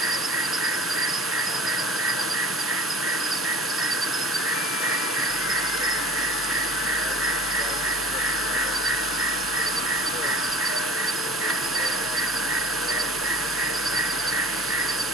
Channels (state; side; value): normal; both; correlation 0.46